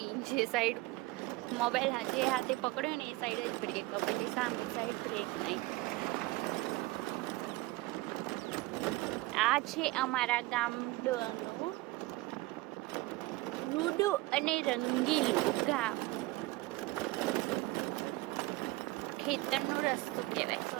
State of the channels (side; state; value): left; quieter; 20.5 dB